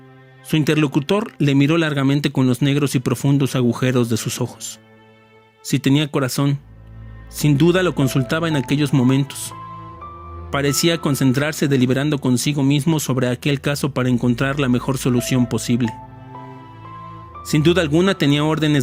Su interlocutor le miró largamente con los negros y profundos agujeros de sus ojos. Si tenía corazón, sin duda lo consultaba en aquellos momentos. Parecía concentrarse deliberando consigo mismo sobre aquel caso para encontrar la mejor solución posible. Sin duda alguna tenía órdenes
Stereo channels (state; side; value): identical; both; correlation 1.00